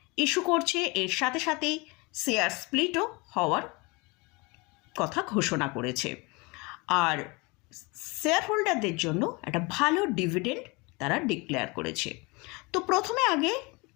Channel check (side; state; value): right; quieter; 26.8 dB